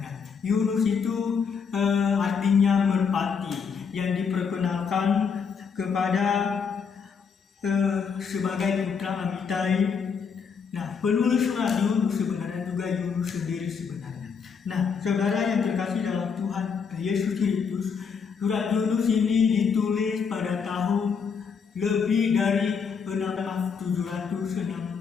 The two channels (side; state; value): right; quieter; 6.1 dB